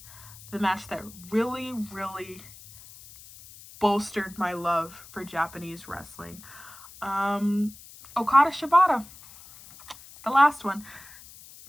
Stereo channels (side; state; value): left; noise; hiss, 19 dB below the sound